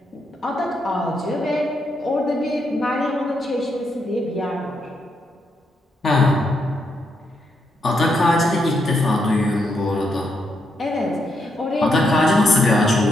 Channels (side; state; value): both; normal; correlation 0.79